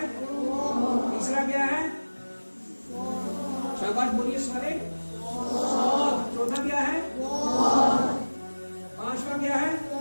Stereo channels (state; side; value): inverted; both; correlation -1.00